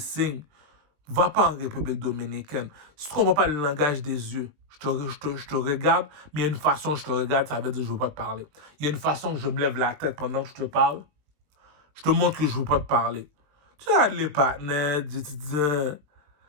va pas en République dominicaine. Si tu comprends pas le langage des yeux, je te regarde, mais il y a une façon que je te regarde, ça veut dire que je ne veux pas te parler. Il y a une façon que je me lève la tête pendant que je te parle, je te montre que je ne veux pas te parler. Tu regardes les partenaires, tu dis,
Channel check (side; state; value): left; late; 20 ms